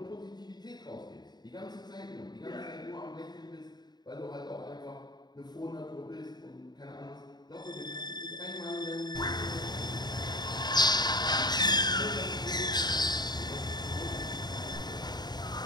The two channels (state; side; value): late; right; 0.20 ms